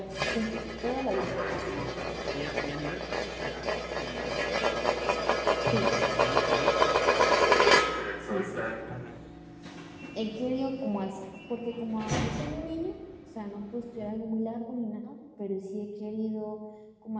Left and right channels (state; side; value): identical; both; correlation 1.00